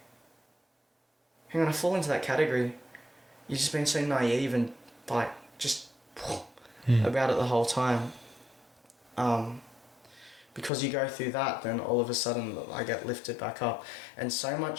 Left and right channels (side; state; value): right; drops out; at 10.7 s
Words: hang on, I fall into that category. You've just been so naive and, like, just about it the whole time. Because you go through that, then all of a sudden I get lifted back up. And so